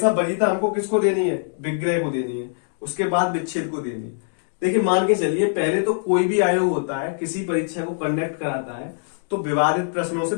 वरीयता हमको किसको देनी है, विग्रह को देनी है, उसके बाद विच्छेद को देनी है। देखिए, मान के चलिए पहले तो कोई भी आयोग होता है किसी परीक्षा को कंडक्ट कराता है तो विवादित प्रश्नों से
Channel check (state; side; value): silent; right; digital silence